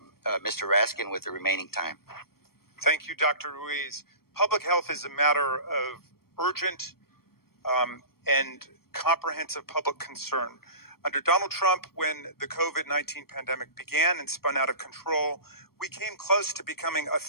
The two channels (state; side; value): late; right; 0.94 ms